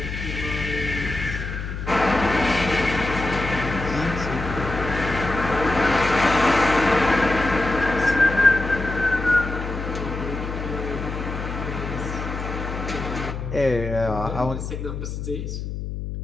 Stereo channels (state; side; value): noise; left; hum, 6 dB below the sound